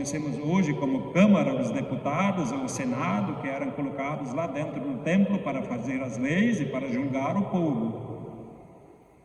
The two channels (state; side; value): identical; both; correlation 1.00